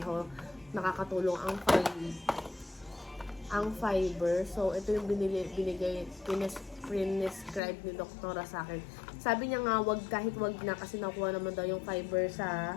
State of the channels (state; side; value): drops out; right; at 7.6 s